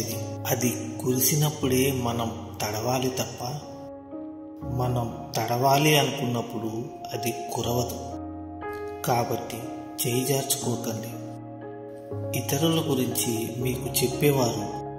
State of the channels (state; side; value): identical; both; correlation 1.00